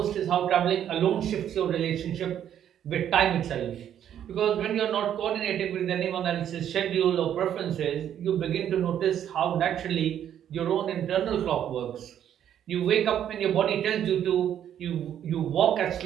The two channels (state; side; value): quieter; left; 10.0 dB